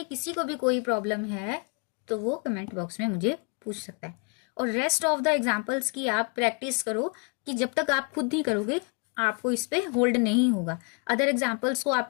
किसी को भी कोई प्रॉब्लम है तो वो कमेंट बॉक्स में मुझे पूछ सकता है। और रेस्ट ऑफ द एग्जाम्पल्स की आप प्रैक्टिस करो, कि जब तक आप खुद नहीं करोगे आपको इस पे होल्ड नहीं होगा। अदर एग्जाम्पल्स को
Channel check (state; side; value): quieter; right; 34.8 dB